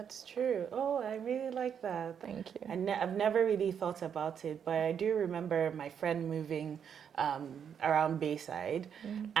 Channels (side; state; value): left; quieter; 7.9 dB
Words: true. Oh, I really like that. Thank you. I've never really thought about it, but I do remember my friend moving around Bayside,